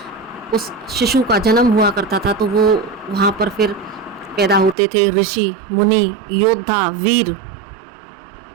उस शिशु का जन्म हुआ करता था तो वो वहाँ पर फिर पैदा होते थे ऋषि, मुनि, योद्धा, वीर,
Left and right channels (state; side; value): drops out; left; at 4.8 s